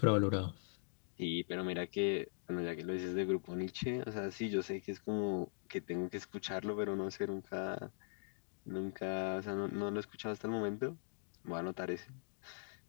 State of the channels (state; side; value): silent; right; digital silence